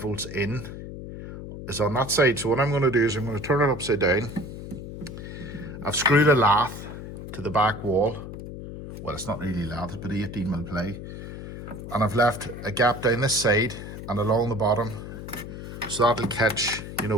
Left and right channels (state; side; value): noise; left; hum, 10 dB below the sound